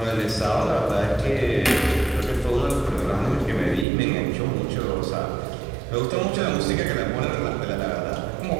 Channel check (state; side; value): drops out; left; at 3.9 s